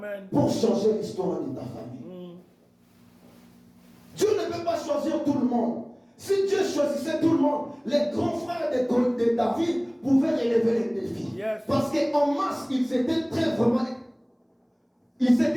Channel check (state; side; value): identical; both; correlation 1.00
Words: pour changer l'histoire de ta famille. Dieu ne peut pas choisir tout le monde. Si Dieu choisissait tout le monde, les grands frères de David pouvaient relever les défis. Yes. Parce qu'en masse, ils étaient ils